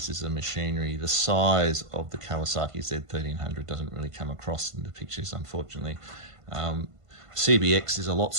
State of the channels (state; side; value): late; left; 1.5 ms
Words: of machinery. The size of the Kawasaki Z1300 doesn't really come across in the pictures, unfortunately. CBX is a lot